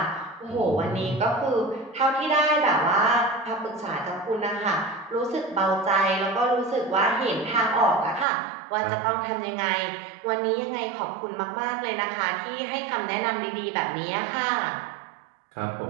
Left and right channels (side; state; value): left; drops out; at 8.2 s